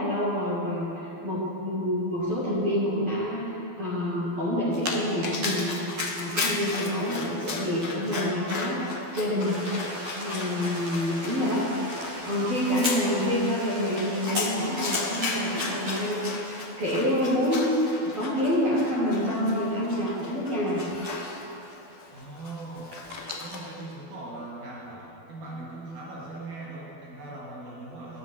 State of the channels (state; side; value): late; left; 12 ms